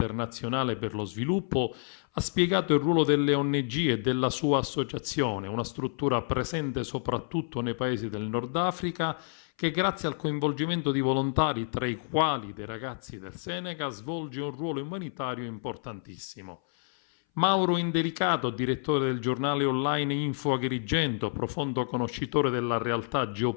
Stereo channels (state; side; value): silent; right; 58 dB below the other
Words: per lo Sviluppo, ha spiegato il ruolo delle ONG e della sua associazione, una struttura presente soprattutto nei paesi del Nord Africa, che grazie al coinvolgimento di volontari, tra i quali dei ragazzi del Senegal, svolge un ruolo umanitario importantissimo. Mauro Indelicato, direttore del giornale online Info Agrigento, profondo conoscitore della realtà